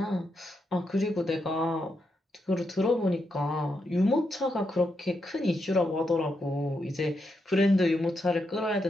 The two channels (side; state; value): both; normal; correlation 0.83